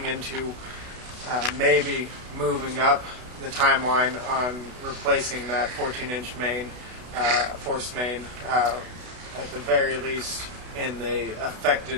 into maybe moving up the timeline on replacing that 14-inch main, force main, at the very least in the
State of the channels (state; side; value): late; left; 32 ms